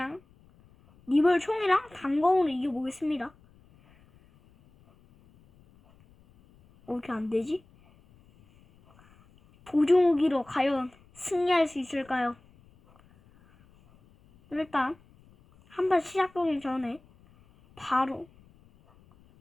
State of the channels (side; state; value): left; noise; rumble, 29 dB below the sound